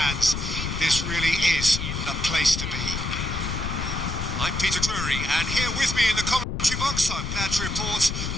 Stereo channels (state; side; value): noise; left; rumble, 4 dB below the sound